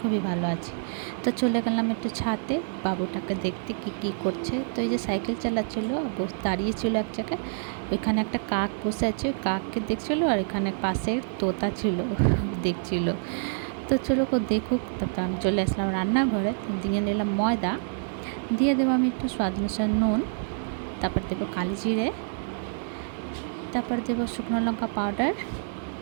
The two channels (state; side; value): silent; left; 56 dB below the other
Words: ভালো আছি। তো চলে গেলাম একটু ছাদে বাবুটাকে দেখতে কি করছে। তো এই যে সাইকেল চালাচ্ছিলো, দাঁড়িয়েছিল এক জায়গায়, ওইখানে একটা কাক বসে আছে, ওই কাককে দেখছিলো, আর এখানে পাশে তোতা ছিল দেখছিল। তো চলো দেখুক। তারপর আমি চলে আসলাম রান্নাঘরে, দিয়ে নিলাম ময়দা, দিয়ে দেবো আমি একটু স্বাদ অনুসারে নুন, তারপর দেবো কালি জিরে, তারপর দেবো শুকনো লঙ্কা পাউডার,